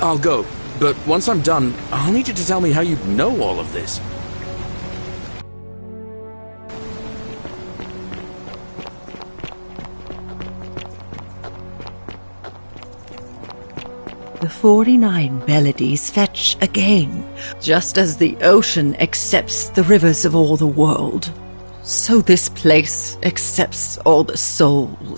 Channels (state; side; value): inverted; both; correlation -1.00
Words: I'll go, but once I'm done, I'll need you to tell me how you know all of this. The 49 Beladies fetch again, just as the ocean accepts the rivers of all the world. So this place accepts all the